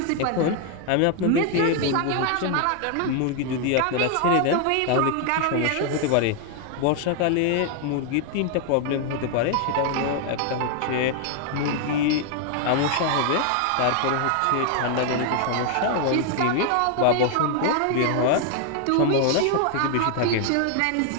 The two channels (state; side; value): different; both; correlation 0.00